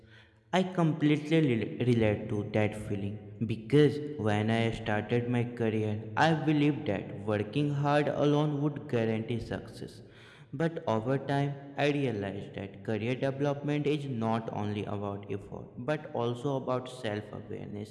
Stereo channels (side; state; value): both; identical; correlation 1.00